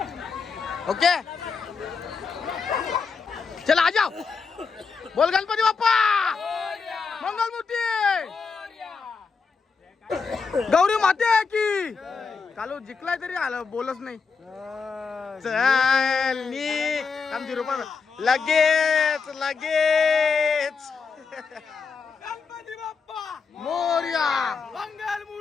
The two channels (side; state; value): right; quieter; 5.2 dB